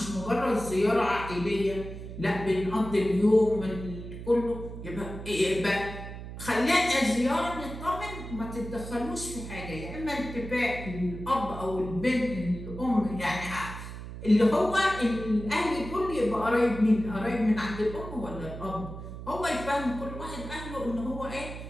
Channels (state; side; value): noise; right; hum, 10 dB below the sound